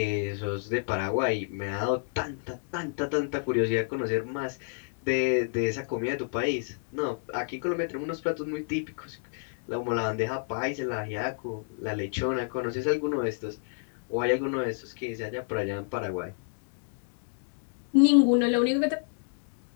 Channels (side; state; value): right; silent; digital silence